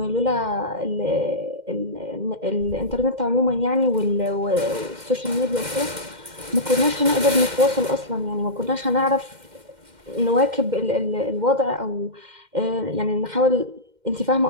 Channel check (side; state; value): left; late; 2.1 ms